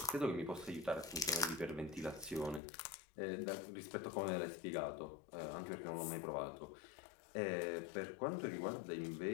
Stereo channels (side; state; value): right; drops out; at 2.6 s